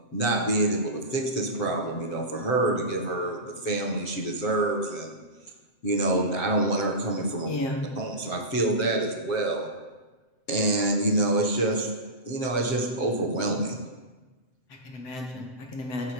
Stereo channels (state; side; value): late; right; 7.7 ms